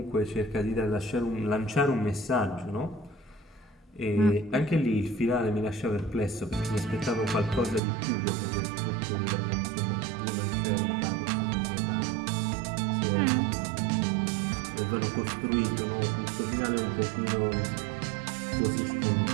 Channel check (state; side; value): drops out; left; at 7.8 s